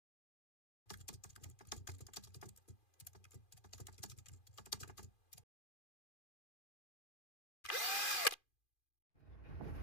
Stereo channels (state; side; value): late; right; 2.4 ms